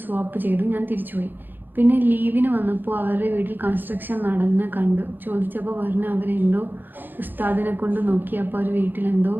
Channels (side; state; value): left; late; 0.092 ms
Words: സ്വാപ്പ് ചെയ്തു. ഞാൻ തിരിച്ചുപോയി. പിന്നെ ലീവിന് വന്നപ്പോൾ അവരുടെ വീട്ടിൽ കൺസ്ട്രക്ഷൻ നടന്ന് കണ്ടു. ചോദിച്ചപ്പോൾ പറഞ്ഞ് അവരെന്തോ ഉസ്താദിനെ കൊണ്ട് നോക്കി. അപ്പോൾ അവർ വീട്ടിലെന്തോ